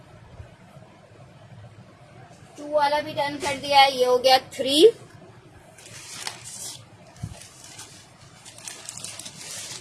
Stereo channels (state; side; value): identical; both; correlation 1.00